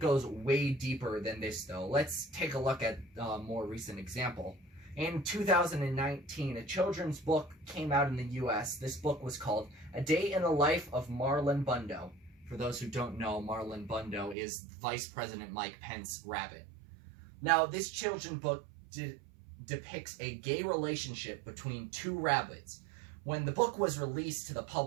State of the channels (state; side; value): drops out; left; at 14.4 s